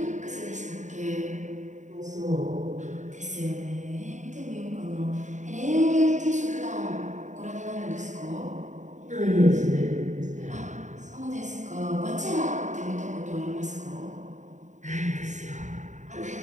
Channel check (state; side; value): late; left; 0.35 ms